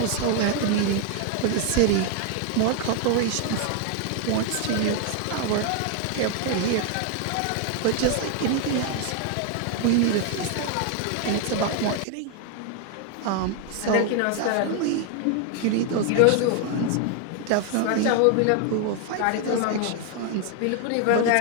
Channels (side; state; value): both; different; correlation 0.01